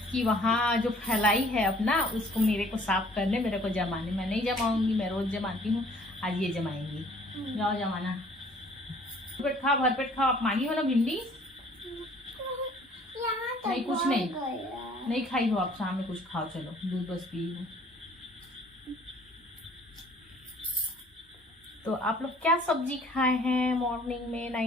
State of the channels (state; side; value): normal; both; correlation 0.56